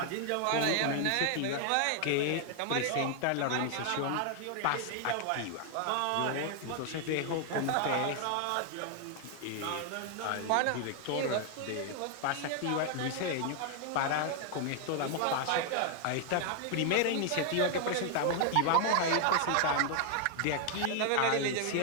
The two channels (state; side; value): different; both; correlation 0.00